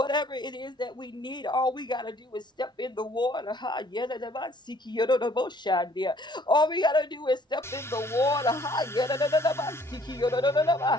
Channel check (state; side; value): normal; both; correlation 0.59